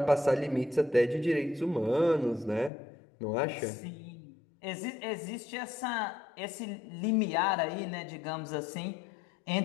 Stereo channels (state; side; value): drops out; right; at 2.7 s